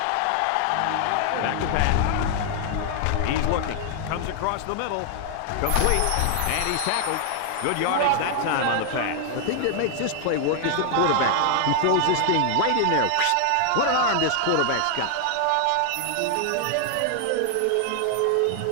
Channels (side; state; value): both; different; correlation 0.00